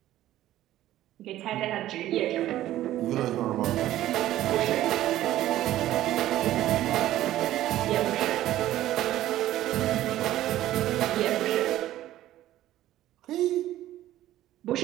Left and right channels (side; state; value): left; quieter; 13.9 dB